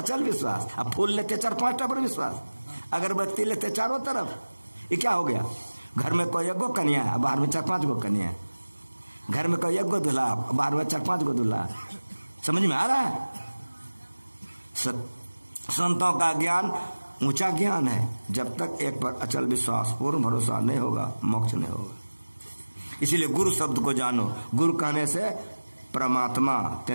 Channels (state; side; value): inverted; both; correlation -1.00